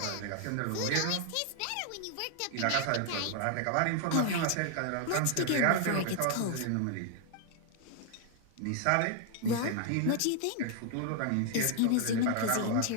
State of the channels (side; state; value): both; different; correlation 0.00